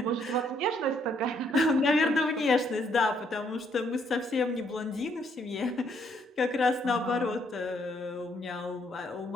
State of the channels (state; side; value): normal; both; correlation 0.70